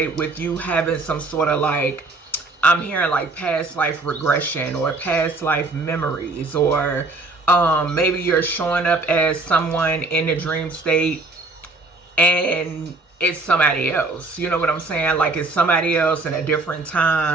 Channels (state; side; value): quieter; left; 3.3 dB